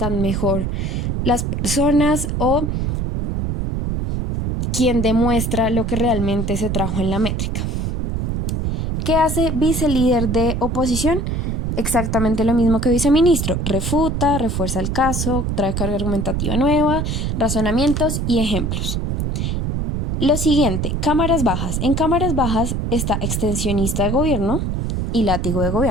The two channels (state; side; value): noise; right; rumble, 1 dB below the sound